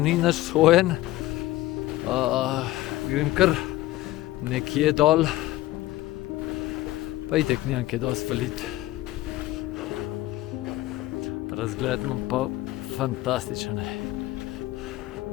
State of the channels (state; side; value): quieter; right; 16.6 dB